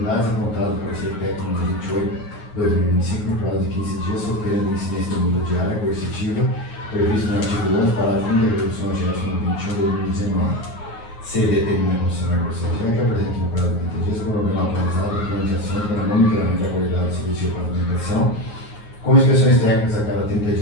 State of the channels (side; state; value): right; late; 9.5 ms